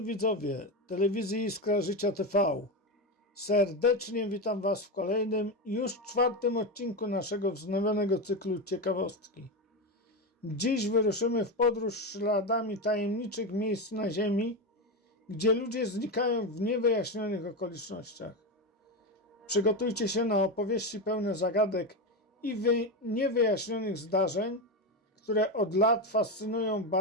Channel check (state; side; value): normal; both; correlation 0.14